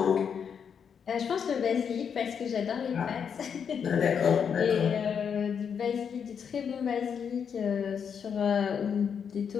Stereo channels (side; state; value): right; quieter; 7.2 dB